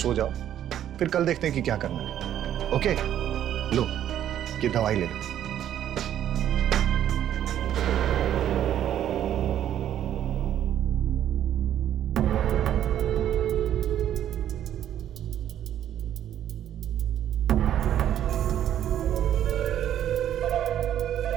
जाओ, फिर कल देखते हैं कि क्या करना है। ओके, लो ये दवाई ले लो।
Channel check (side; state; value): left; quieter; 10.8 dB